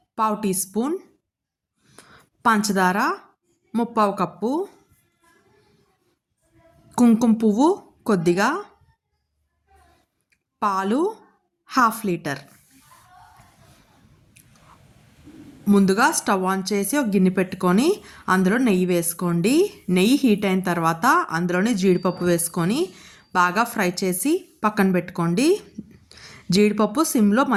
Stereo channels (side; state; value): both; identical; correlation 1.00